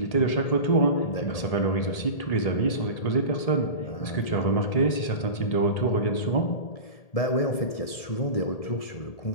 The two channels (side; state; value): right; late; 1.8 ms